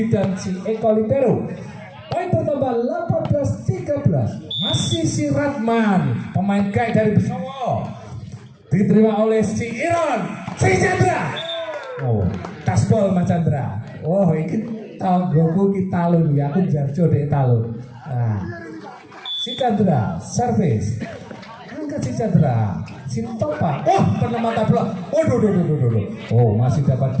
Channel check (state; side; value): identical; both; correlation 1.00